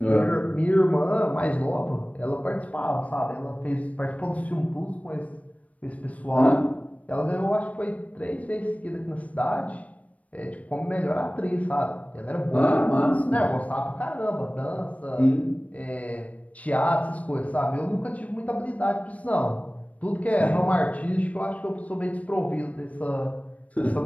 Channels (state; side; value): late; right; 0.067 ms